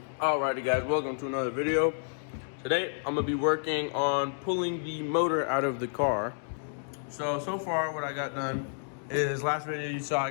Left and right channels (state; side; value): silent; right; digital silence